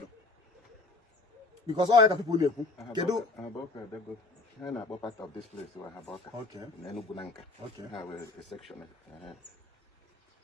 Because all other people knew. I'm about part of this place where I have okay. Nanka. Okay. I have a section.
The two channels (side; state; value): right; quieter; 3.3 dB